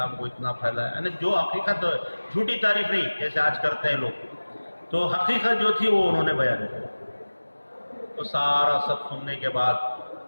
کو اتنا پھیلایا. یعنی جو حقیقت، جھوٹی تعریف نہیں جیسے آج کرتے ہیں لوگ، تو حقیقت جو تھی وہ انہوں نے بیان کی. تو سارا سب سننے کے بعد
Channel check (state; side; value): inverted; both; correlation -1.00